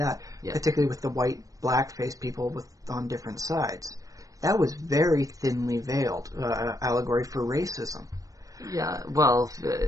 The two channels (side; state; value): left; late; 0.16 ms